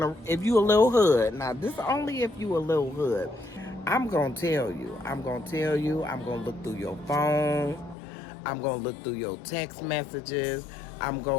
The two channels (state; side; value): drops out; right; at 8.0 s